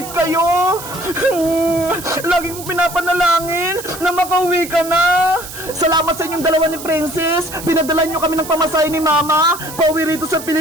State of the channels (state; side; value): noise; right; hiss, 12 dB below the sound